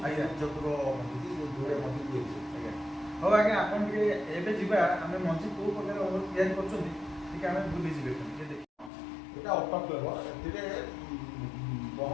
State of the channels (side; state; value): right; drops out; at 8.9 s